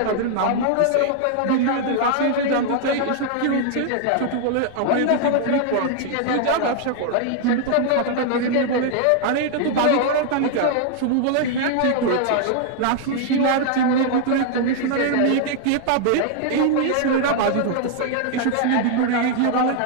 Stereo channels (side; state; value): both; different; correlation 0.00